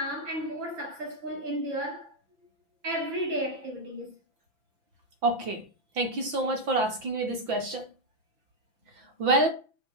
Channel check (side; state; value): left; late; 5.9 ms